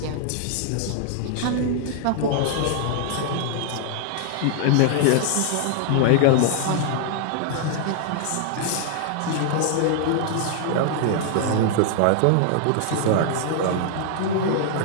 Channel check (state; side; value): different; both; correlation -0.01